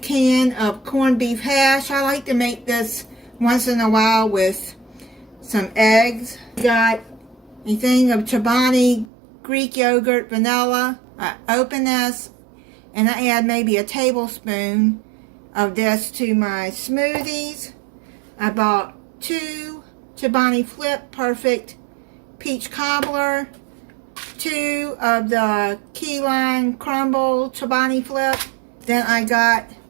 of corned beef hash. I like to make this once in a while with some eggs. Got a thing of Chobani Greek yogurt vanilla. I open this and I add maybe a tablespoon of this to my smoothies. I bought 2 Chobani Flip Perfect Peach Cobbler, 2 of the Key Lime Crumble Chobani Flip. Then I got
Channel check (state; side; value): drops out; left; at 9.1 s